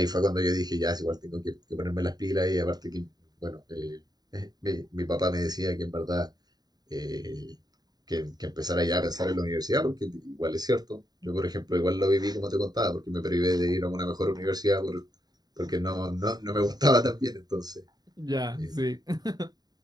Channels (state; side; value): late; left; 0.19 ms